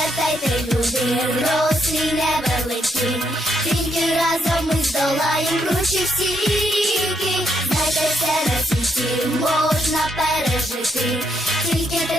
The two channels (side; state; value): both; normal; correlation 0.76